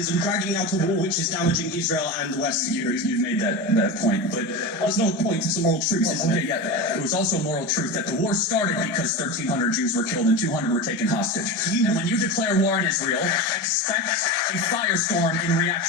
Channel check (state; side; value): normal; both; correlation 0.24